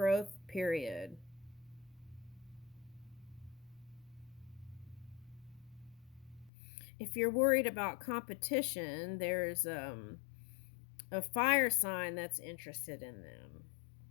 period. If you're worried about competition, there's a fire sign that's interested in them.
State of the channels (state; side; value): drops out; right; at 6.5 s